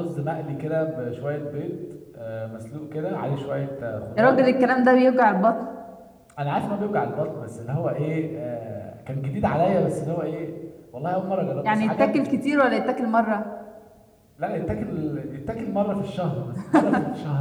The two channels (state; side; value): identical; both; correlation 1.00